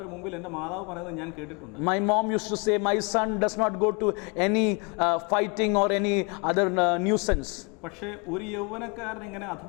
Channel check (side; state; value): right; quieter; 32.5 dB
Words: മുമ്പിൽ എൻ്റെ മാതാവ് പറയുന്നത് ഞാൻ കേട്ടിട്ടുണ്ട്. My mom used to say, my son does not go to any fighting or any other nuisance. പക്ഷേ ഒരു യൗവനക്കാരൻ എങ്ങനെ